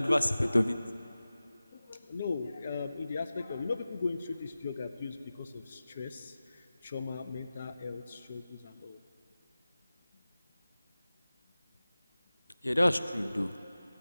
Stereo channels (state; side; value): inverted; both; correlation -0.96